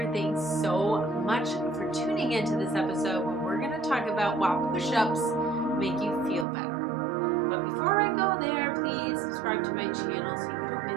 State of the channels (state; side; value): drops out; left; at 6.5 s